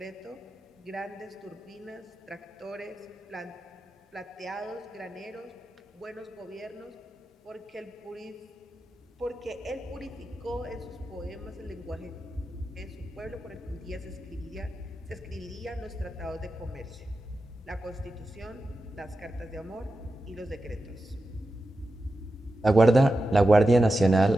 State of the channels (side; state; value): both; normal; correlation 0.91